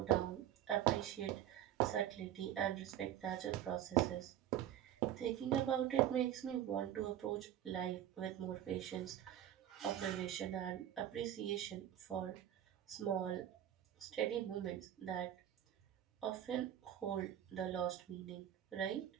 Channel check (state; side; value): quieter; left; 11.4 dB